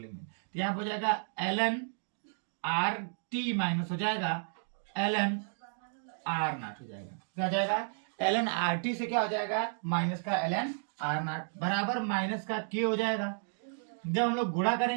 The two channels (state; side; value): silent; left; digital silence